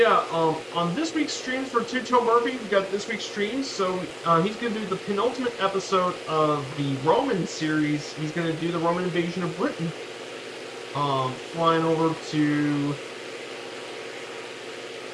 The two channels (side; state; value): both; identical; correlation 1.00